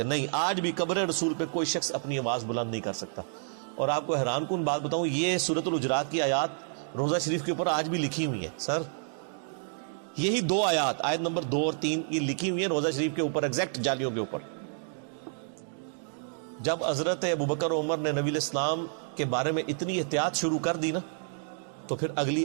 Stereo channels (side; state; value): left; silent; digital silence